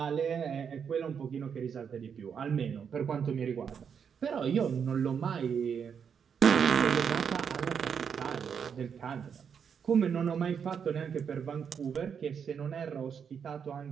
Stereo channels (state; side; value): quieter; left; 7.1 dB